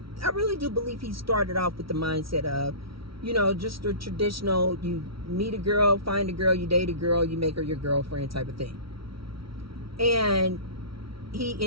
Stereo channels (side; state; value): left; late; 0.75 ms